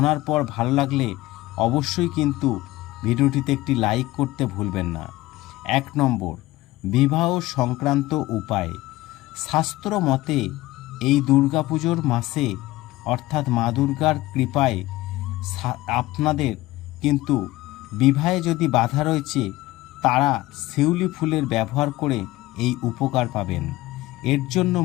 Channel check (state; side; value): quieter; right; 18.0 dB